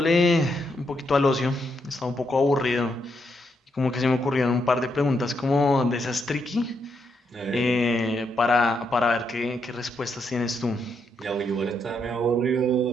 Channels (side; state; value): both; normal; correlation 0.79